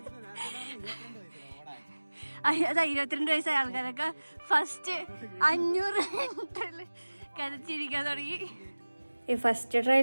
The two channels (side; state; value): both; inverted; correlation -1.00